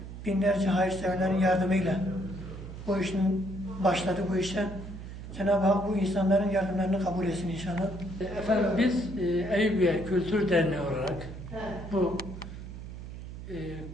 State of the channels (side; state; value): right; noise; hum, 11 dB below the sound